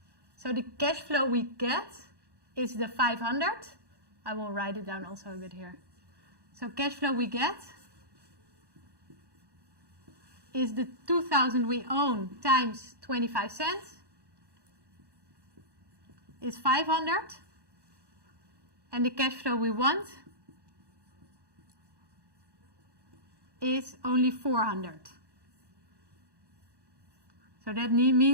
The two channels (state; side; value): late; left; 1.1 ms